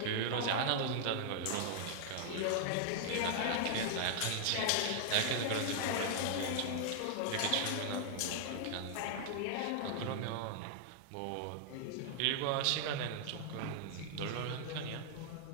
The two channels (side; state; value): both; different; correlation -0.01